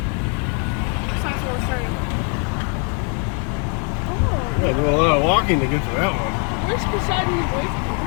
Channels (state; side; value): quieter; right; 39.2 dB